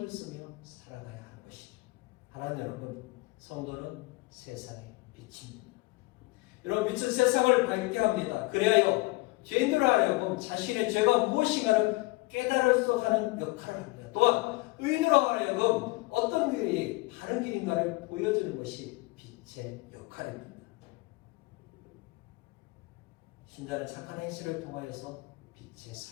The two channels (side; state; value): right; quieter; 23.0 dB